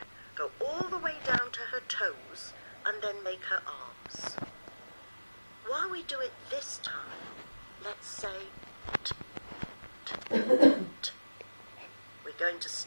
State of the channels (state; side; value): inverted; both; correlation -1.00